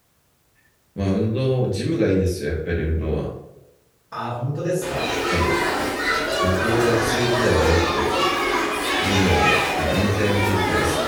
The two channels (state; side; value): identical; both; correlation 1.00